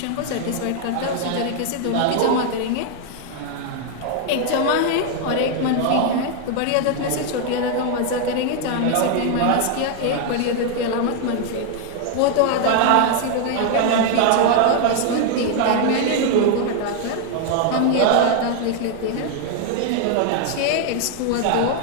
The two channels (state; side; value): different; both; correlation 0.00